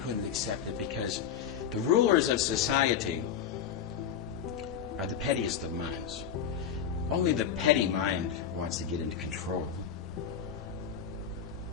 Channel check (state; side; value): quieter; right; 8.2 dB